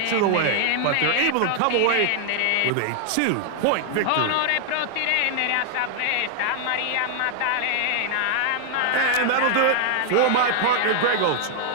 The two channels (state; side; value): different; both; correlation 0.00